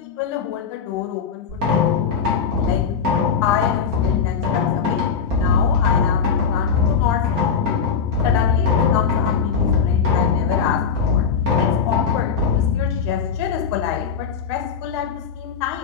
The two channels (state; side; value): quieter; right; 6.3 dB